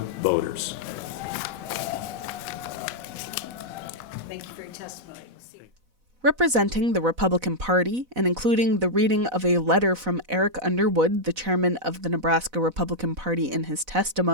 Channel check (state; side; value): late; left; 4.0 ms